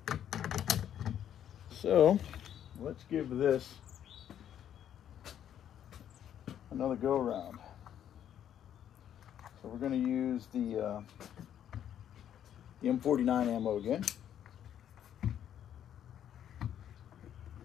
So let's give this another go around. So we're going to use the M49 ammo again.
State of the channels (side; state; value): right; quieter; 10.0 dB